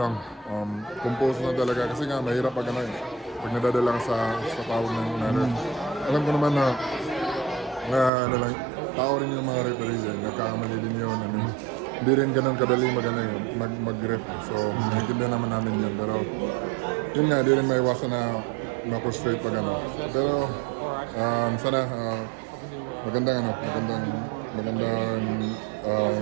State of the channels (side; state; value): left; drops out; at 8.1 s